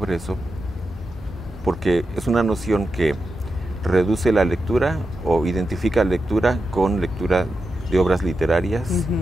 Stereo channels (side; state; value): both; normal; correlation 0.89